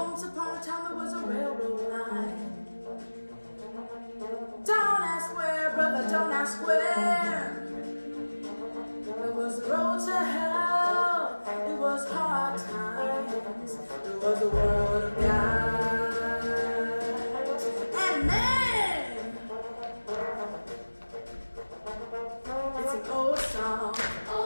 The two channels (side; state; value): both; inverted; correlation -1.00